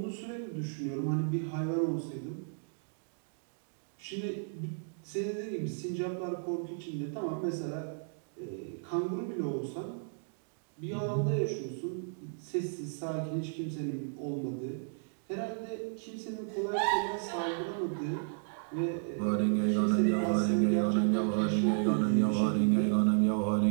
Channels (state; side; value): silent; left; digital silence